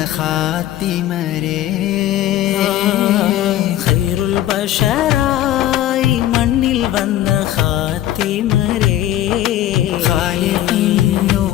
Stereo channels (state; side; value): quieter; right; 13.0 dB